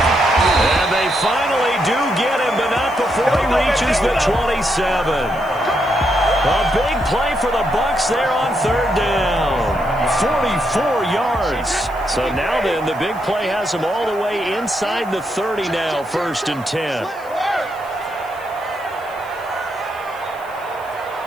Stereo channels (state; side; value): noise; left; hiss, 25 dB below the sound